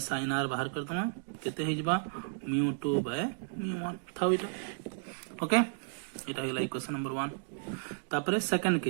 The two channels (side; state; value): left; silent; digital silence